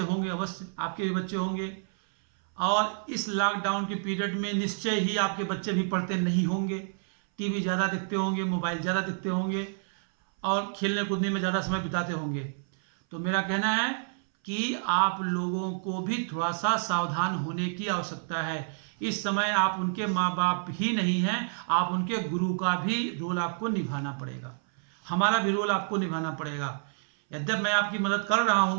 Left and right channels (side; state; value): left; silent; 59 dB below the other